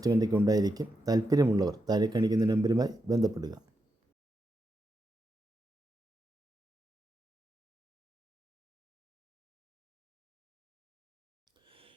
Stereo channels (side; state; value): both; normal; correlation 0.85